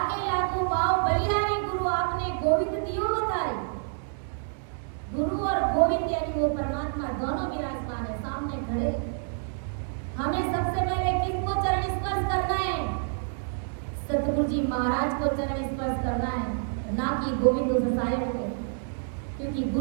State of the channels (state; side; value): silent; left; digital silence